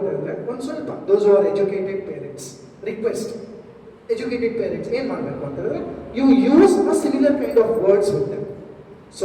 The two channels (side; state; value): both; identical; correlation 1.00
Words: ಹೇಳಿದ್ರೆ, ಒಂದು ಸ್ವಲ್ಪ those are educated parents request, educated parents ಏನು ಮಾಡಬೇಕು ಅಂತ ಹೇಳಿದ್ರೆ, you use a similar kind of words with them